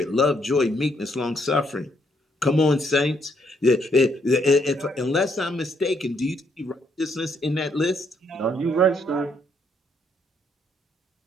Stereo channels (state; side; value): normal; both; correlation 0.72